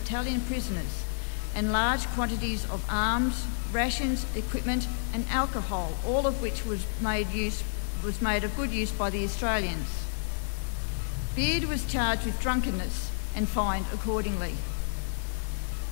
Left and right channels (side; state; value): right; silent; digital silence